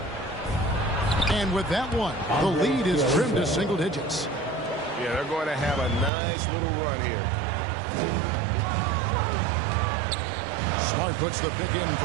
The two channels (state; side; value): drops out; left; at 6.1 s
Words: And with that one, the lead is trimmed to single digits. Yeah, they're going to have a nice little run here. Smart puts the pick in for